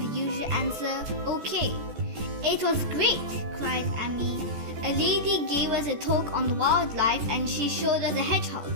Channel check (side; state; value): left; late; 14 ms